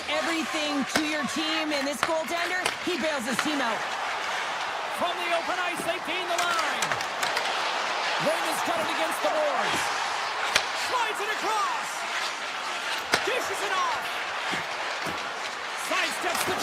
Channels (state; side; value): identical; both; correlation 1.00